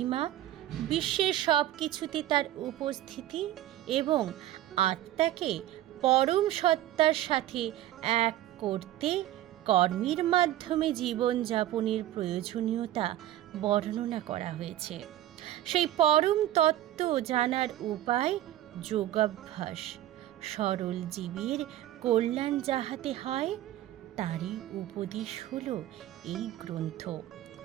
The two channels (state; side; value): quieter; left; 13.6 dB